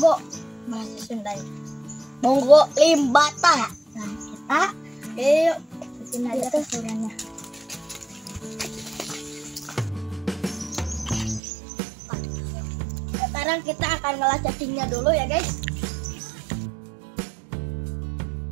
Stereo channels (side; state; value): left; drops out; at 11.4 s